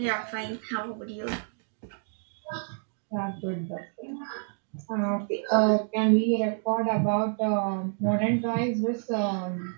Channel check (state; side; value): silent; left; digital silence